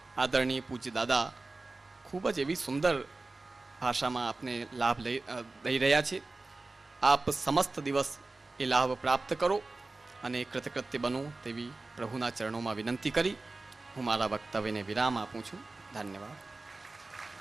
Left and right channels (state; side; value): quieter; left; 3.3 dB